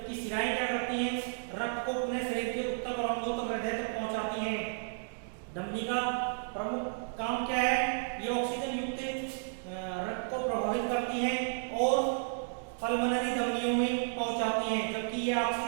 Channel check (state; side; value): silent; left; digital silence